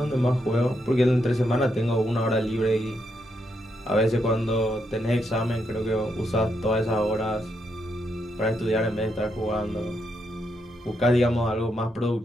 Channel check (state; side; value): normal; both; correlation 0.80